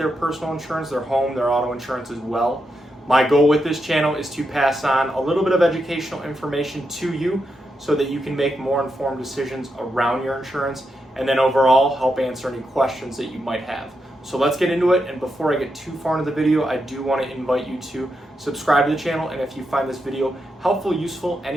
personal insurance, their home, their auto insurance as well. My goal with this channel is to pass on a little bit of educational information to you so that you can make more informed decisions around your insurance and then overall help answer any questions that you might have. So let's get into it, and before I get too far into the video, I do want to invite you to subscribe to the channel, and if you find this video helpful, useful,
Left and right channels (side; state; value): both; normal; correlation 0.85